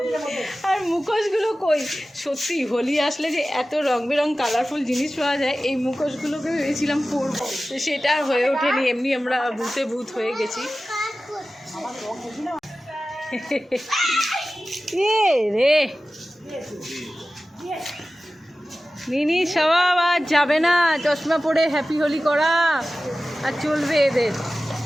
আর মুখোশগুলো কই, সত্যি হোলি আসলে যে এত রং বেরং কালারফুল জিনিস পাওয়া যায়, এই মুখোশগুলোকে ভেবেছিলাম পরবো, তো সেটা আর হয়ে ওঠেনি। এমনি আমরা ভূতে ভূত হয়ে গেছি। রে মিনি সবাব আর যাবে না, চশমা পরে হ্যাপি হোলি করা আর চলবে এদের।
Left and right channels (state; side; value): normal; both; correlation 0.95